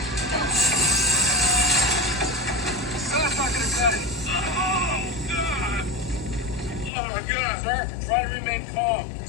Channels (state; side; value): drops out; right; at 6.9 s